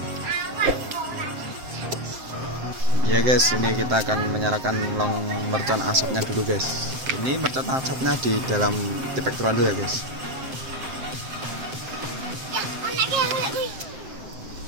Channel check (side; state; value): left; late; 7.7 ms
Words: Ya guys, ini kita akan menyalakan long mercon asapnya dulu guys. Ini mercon asapnya di dalam tipek trondol ya guys.